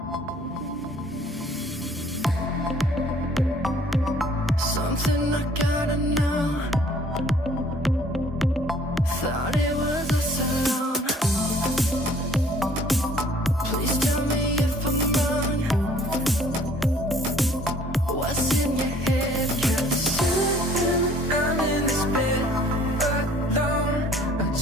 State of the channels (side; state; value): both; normal; correlation 0.57